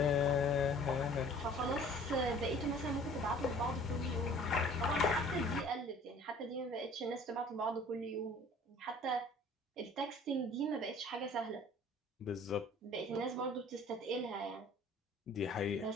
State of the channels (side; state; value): both; normal; correlation 0.50